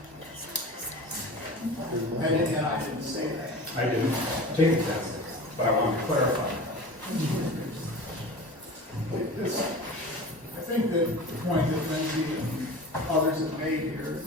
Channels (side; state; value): both; normal; correlation 0.35